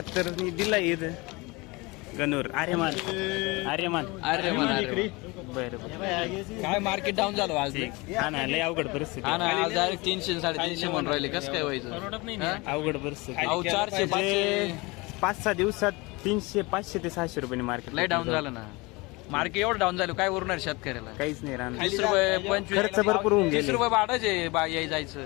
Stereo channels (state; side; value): quieter; right; 24.7 dB